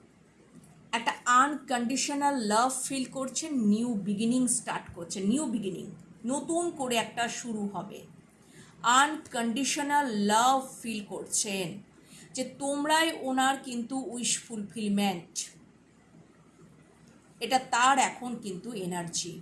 একটা আনকন্ডিশনাল লাভ ফিল করছেন, নিউ বিগিনিং স্টার্ট করছেন, নিউ বিগিনিং, নতুন করে একটা শুরু হবে। আনকন্ডিশনাল লাভ ফিল করছেন যে তোমরাই ওনার কিন্তু উইশ ফুলফিলমেন্ট, এটা তার এখন কিন্তু এনার্জি,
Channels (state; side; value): identical; both; correlation 1.00